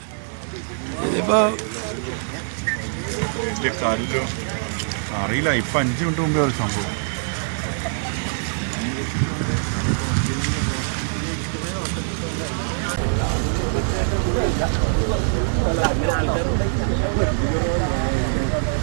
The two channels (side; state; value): left; silent; digital silence